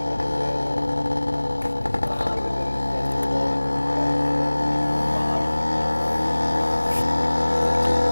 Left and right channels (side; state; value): both; inverted; correlation -1.00